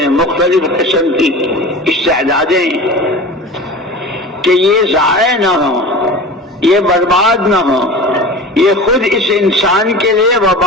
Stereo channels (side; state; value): both; normal; correlation 0.34